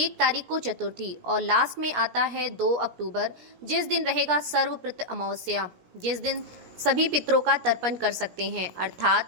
तारीख को चतुर्थी और लास्ट में आता है 2 अक्टूबर, जिस दिन रहेगा सर्वप्रत अमावस्या, जिस दिन सभी पितरों का तर्पण कर सकते हैं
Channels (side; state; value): left; late; 17 ms